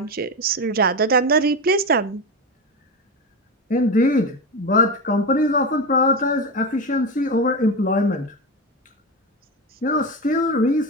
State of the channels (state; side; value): normal; both; correlation 0.17